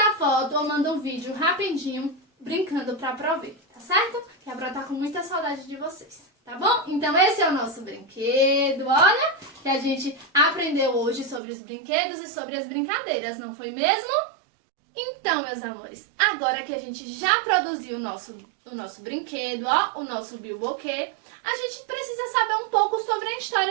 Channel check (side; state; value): left; drops out; at 11.4 s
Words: foto ou manda um vídeo rapidinho brincando pra Pro ver, tá certo? Que a Pro tá com muita saudade de vocês. Tá bom? Então esse é o nosso brinquedo, olha, que a gente aprendeu hoje sobre os brinquedos e sobre as brincadeiras, não foi mesmo? Então, meus amores, agora que a gente já produziu o nosso brinquedo, ó, o nosso bilboquê, a gente precisa saber um pouco sobre a